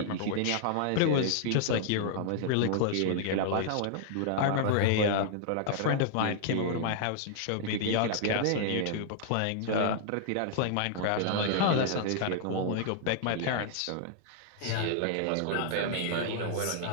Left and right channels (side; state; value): both; different; correlation -0.01